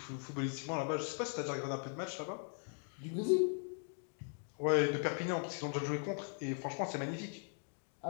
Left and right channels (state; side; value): silent; right; 51 dB below the other